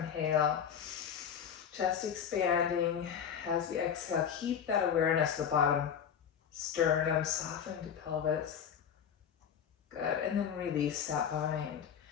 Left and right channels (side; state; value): right; quieter; 8.1 dB